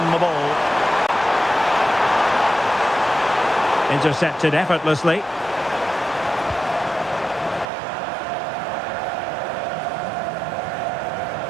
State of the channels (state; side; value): drops out; left; at 7.7 s